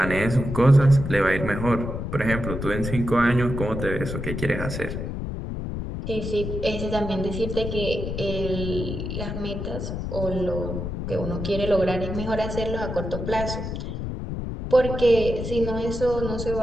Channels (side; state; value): left; noise; rumble, 5 dB below the sound